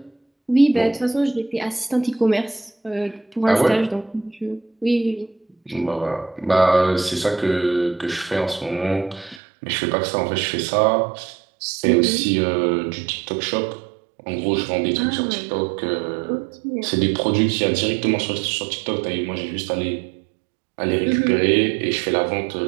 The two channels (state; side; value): drops out; left; at 9.4 s